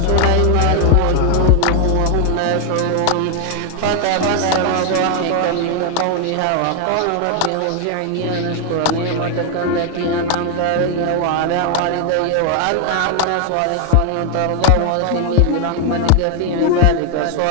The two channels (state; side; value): different; both; correlation 0.00